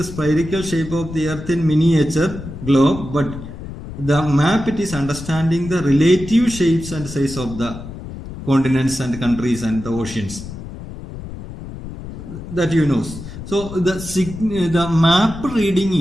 spherical shape of the earth in miniature globe, but the map it is understanding the relative shapes and size of the continents and countries and the oceans, that you know. So the map reading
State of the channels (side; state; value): left; noise; rumble, 11 dB below the sound